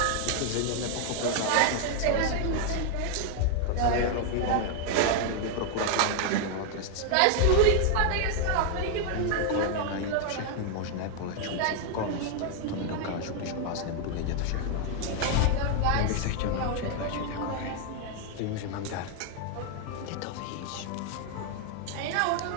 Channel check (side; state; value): both; different; correlation 0.00